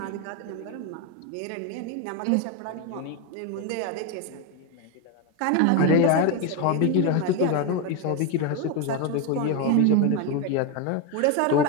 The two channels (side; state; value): both; different; correlation 0.02